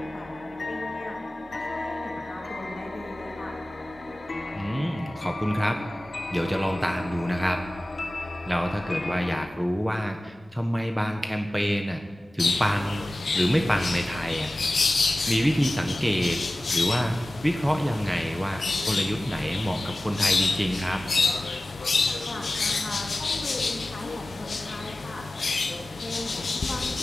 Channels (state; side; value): normal; both; correlation 0.96